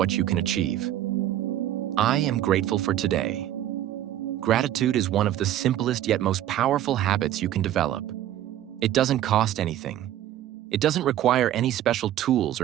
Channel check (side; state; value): left; quieter; 12.4 dB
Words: you can achieve. I am grateful for today. Gratitude is one of the simplest yet most powerful habits you can develop. It doesn't cost anything. It doesn't require any special tools